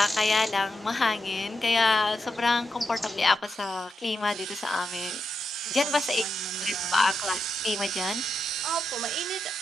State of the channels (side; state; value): both; normal; correlation 0.86